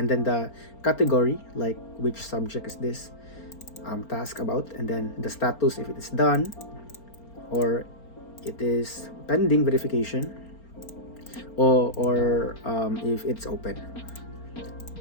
then the category, like which subject is this task about, and then the status if it is done or it is pending verification, or if it's open.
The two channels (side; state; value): right; late; 4.4 ms